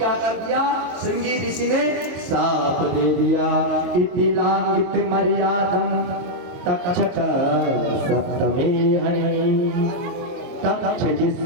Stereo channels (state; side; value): late; left; 22 ms